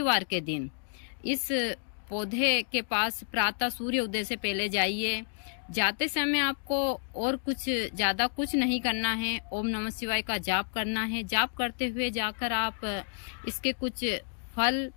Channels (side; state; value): right; silent; digital silence